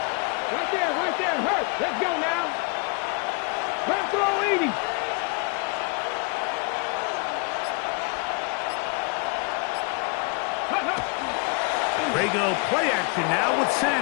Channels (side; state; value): right; quieter; 33.4 dB